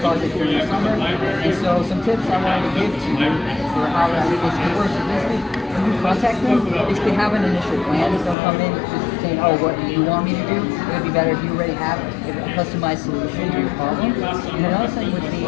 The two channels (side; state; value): right; drops out; at 8.3 s